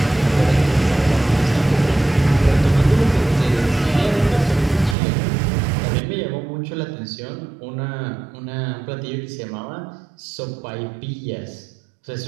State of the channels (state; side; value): drops out; left; at 5.0 s